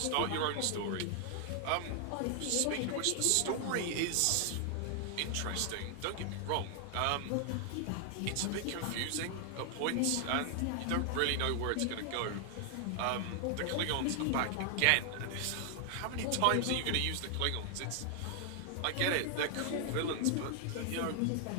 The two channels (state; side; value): different; both; correlation 0.00